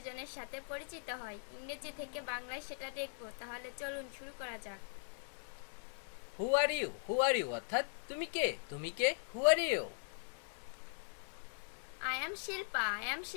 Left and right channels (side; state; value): right; silent; digital silence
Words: সাথে পরিচিত হয় ইংরেজি থেকে বাংলায় সেটা দেখব। তাহলে চলুন শুরু করা যাক। হু আর ইউ অর্থাৎ তুমি কে who are you. I am Shilpa